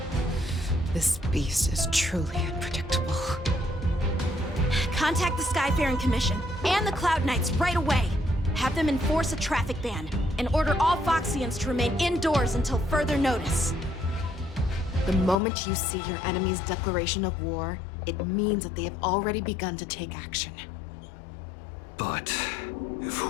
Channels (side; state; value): right; drops out; at 15.4 s